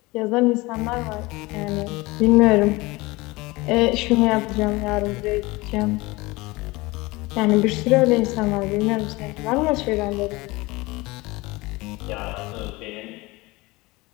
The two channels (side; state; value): right; quieter; 22.4 dB